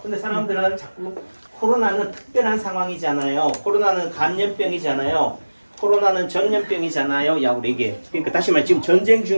근데 사람들은 자꾸 코로나는 특별한 상황이잖아요. 코로나는 감염병이잖아요. 코로나는 전염병이잖아요. 야, 우리 이게. 그러니까 다시 말해 지금 전쟁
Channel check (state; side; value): inverted; both; correlation -1.00